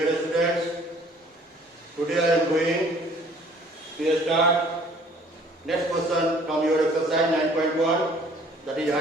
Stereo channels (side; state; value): both; normal; correlation 0.55